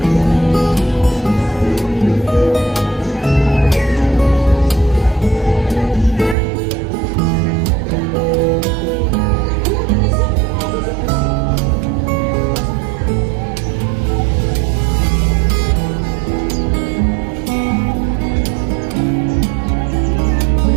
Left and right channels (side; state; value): left; drops out; at 6.4 s